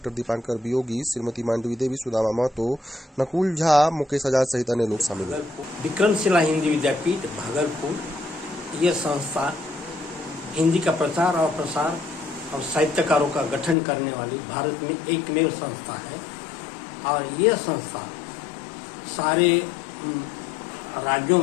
दीपांकर वियोगी, श्रीमती मांडवी देवी, सुदामा महतो, नकुल झा, मुकेश आजाद सहित अन्य लोग शामिल हुए। विक्रमशिला हिंदी विद्यापीठ भागलपुर ये संस्था हिंदी का प्रचार और प्रसार और साहित्यकारों का गठन करने वाली भारत में एकमेव संस्था है और ये संस्था सारे राज्यों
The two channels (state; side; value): drops out; right; at 13.8 s